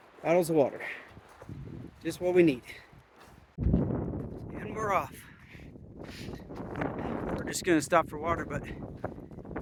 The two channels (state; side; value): identical; both; correlation 1.00